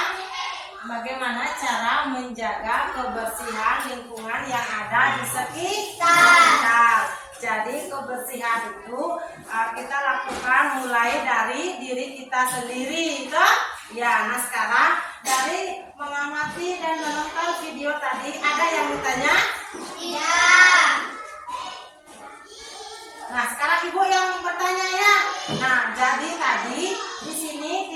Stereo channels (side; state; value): both; identical; correlation 1.00